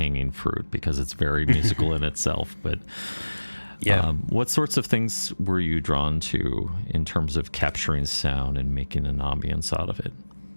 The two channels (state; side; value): inverted; both; correlation -1.00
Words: fruit because it's very musical in itself. But what sorts of things were you drawn to in terms of capturing sound and making an ambience out of it?